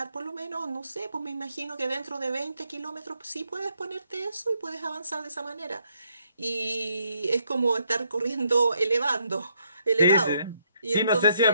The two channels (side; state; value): both; inverted; correlation -0.73